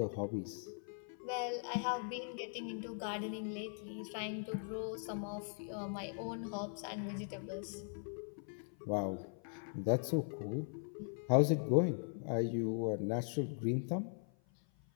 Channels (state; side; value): silent; right; 51 dB below the other